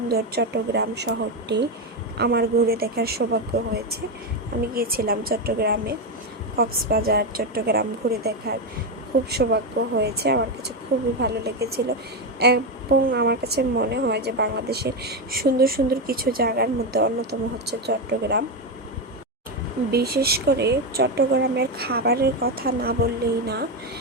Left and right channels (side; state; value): both; normal; correlation 0.10